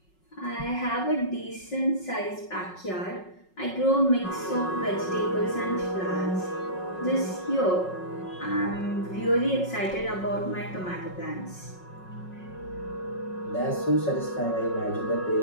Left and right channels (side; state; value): right; late; 5.4 ms